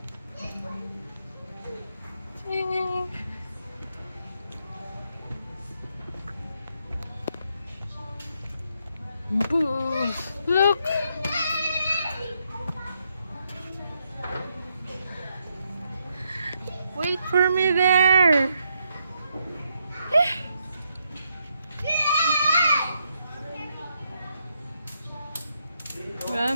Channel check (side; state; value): both; inverted; correlation -0.78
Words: Boo! Look! Wait for me there!